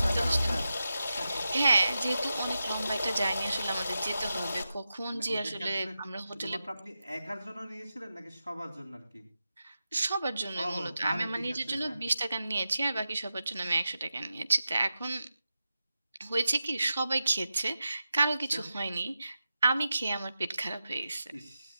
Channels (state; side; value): inverted; both; correlation -0.91